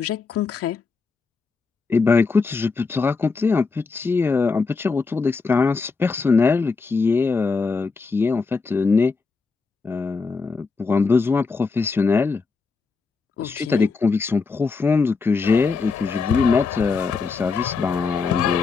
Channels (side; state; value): right; quieter; 4.5 dB